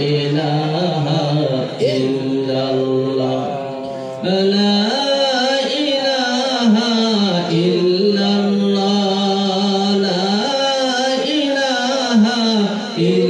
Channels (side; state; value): both; identical; correlation 1.00